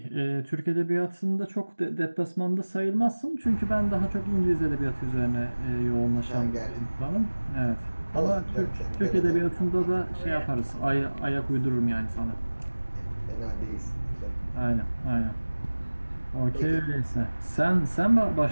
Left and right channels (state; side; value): inverted; both; correlation -1.00